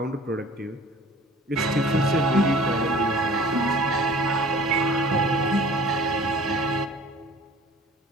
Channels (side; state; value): both; normal; correlation 0.46